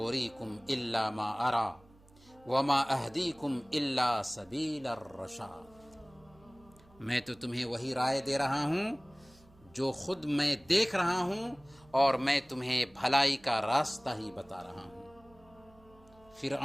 الا ما ارا وما اہدیکم الا سبیل الرشاد، میں تو تمہیں وہی رائے دے رہا ہوں جو خود میں دیکھ رہا ہوں، اور میں تمہیں بھلائی کا راستہ ہی بتا رہا ہوں۔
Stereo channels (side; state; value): right; noise; hum, 27 dB below the sound